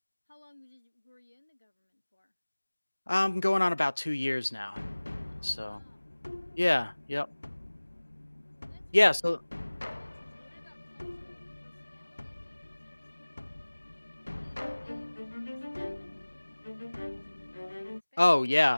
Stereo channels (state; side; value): inverted; both; correlation -1.00